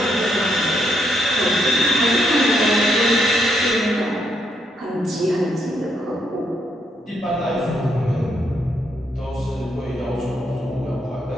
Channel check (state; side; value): normal; both; correlation 0.76